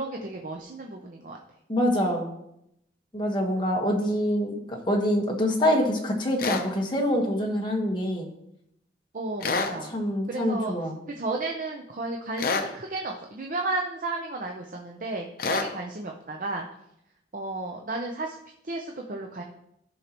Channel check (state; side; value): normal; both; correlation 0.45